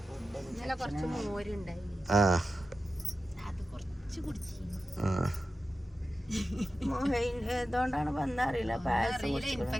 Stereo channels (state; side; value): normal; both; correlation 0.93